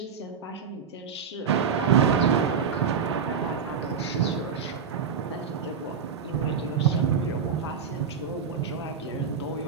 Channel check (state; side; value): quieter; left; 6.5 dB